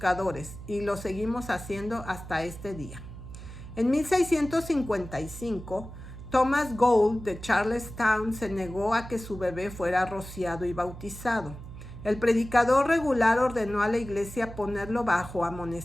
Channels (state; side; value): noise; right; hum, 13 dB below the sound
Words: y lo seguimos haciendo hasta este día. En 1655, Thomas Gould de Charlestown se negó a que su bebé fuera rociado y bautizado. El predicador regular ordenó a la iglesia ponerlo bajo